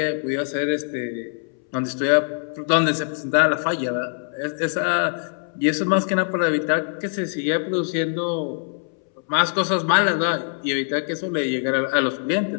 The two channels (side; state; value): right; silent; 63 dB below the other